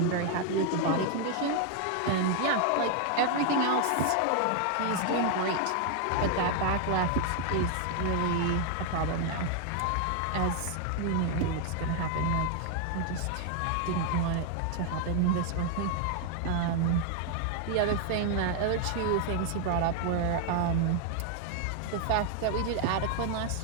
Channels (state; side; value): different; both; correlation 0.00